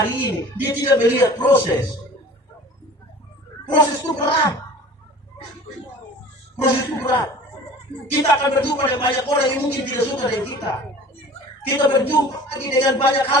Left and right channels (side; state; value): both; normal; correlation 0.44